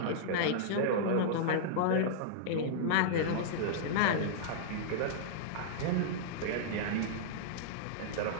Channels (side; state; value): both; different; correlation -0.02